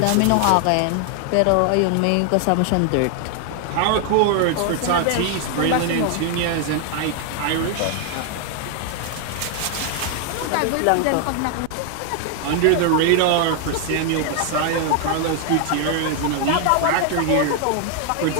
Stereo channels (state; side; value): different; both; correlation 0.00